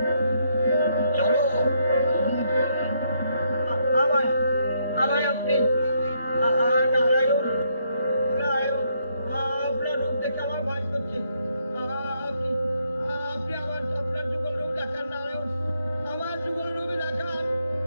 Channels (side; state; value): both; inverted; correlation -0.74